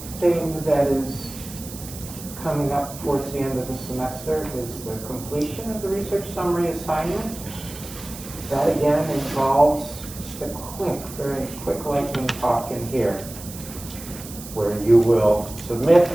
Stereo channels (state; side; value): noise; right; hiss, 14 dB below the sound